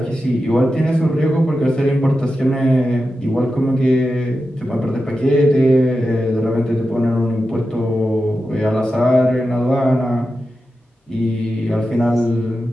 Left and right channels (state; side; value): normal; both; correlation 0.91